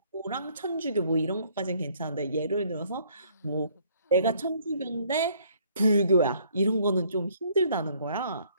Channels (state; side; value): inverted; both; correlation -0.63